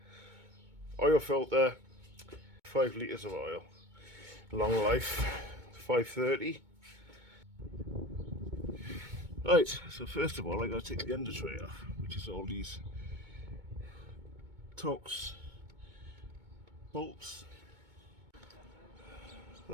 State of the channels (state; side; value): late; left; 2.2 ms